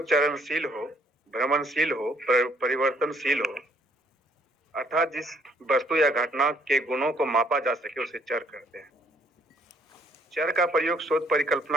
चरणशील हो, भ्रमणशील हो, परिवर्तनशील हो, अर्थात जिस वस्तु या घटना के गुणों को मापा जा सके उसे चर कहते हैं। चर का प्रयोग शोध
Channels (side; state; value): both; normal; correlation 0.65